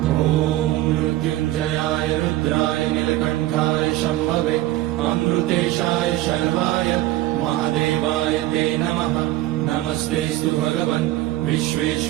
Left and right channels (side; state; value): left; quieter; 15.7 dB